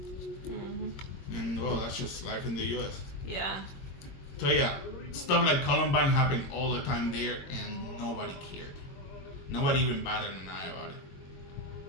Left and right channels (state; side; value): late; right; 22 ms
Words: Mm-hmm. And well, that's just life in the U.S. Yeah. So yeah, stuff like Columbine happened all the time there, and nobody cared. Nobody even batted an eye about it.